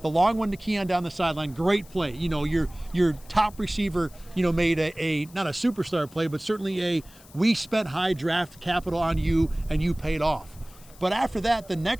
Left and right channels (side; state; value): left; noise; hiss, 24 dB below the sound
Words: the long one to Keon down the sideline, great play. Your top receiver, made a not a superstar play, but certainly we spent high draft capital on you and you paid off. But after that, the